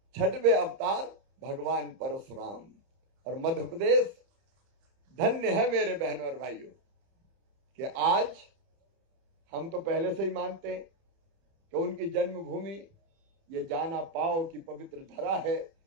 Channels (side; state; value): left; late; 30 ms